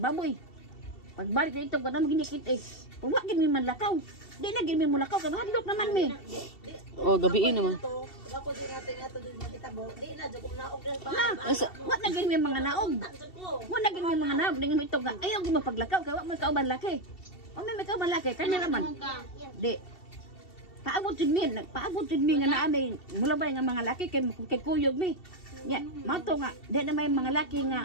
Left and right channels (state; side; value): late; right; 2.7 ms